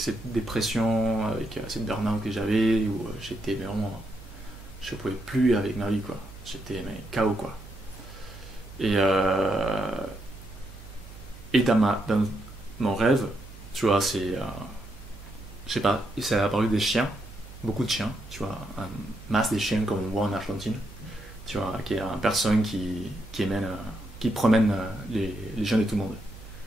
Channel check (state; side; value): noise; right; hum, 17 dB below the sound